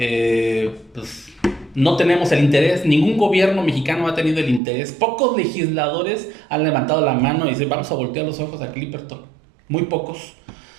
pues, no tenemos el interés, ningún gobierno mexicano ha tenido el interés, pocos legisladores han levantado la mano y dicen vamos a voltear los ojos a Clipperton, muy pocos.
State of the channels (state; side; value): drops out; left; at 4.6 s